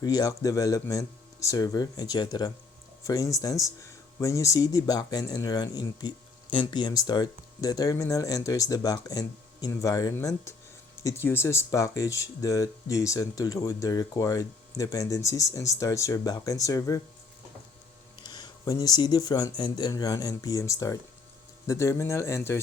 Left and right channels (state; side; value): quieter; right; 4.3 dB